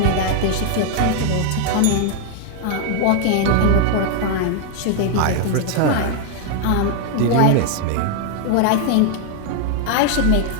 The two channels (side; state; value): both; different; correlation 0.00